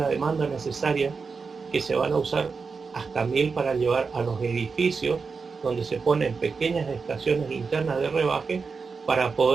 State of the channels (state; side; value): quieter; left; 5.0 dB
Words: demanda necesaria, que se van a usar hasta 1000 para llevar a los edificios, donde se ponen pequeñas estaciones internas de rebaje para